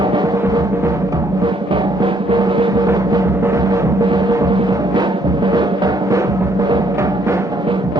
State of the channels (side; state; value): right; late; 38 ms